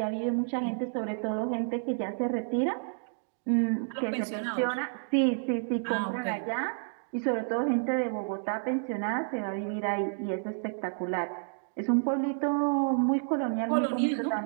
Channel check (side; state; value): left; silent; digital silence